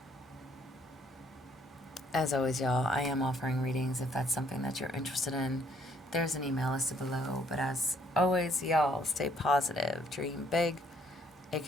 always, y'all, I am offering readings if that's something that you're interested in. There's an email listed below. But as always, y'all, stay positive. Dream big. It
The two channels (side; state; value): both; normal; correlation 0.65